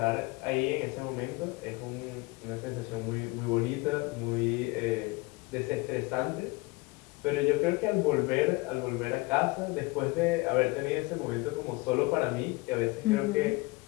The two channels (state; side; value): quieter; right; 24.5 dB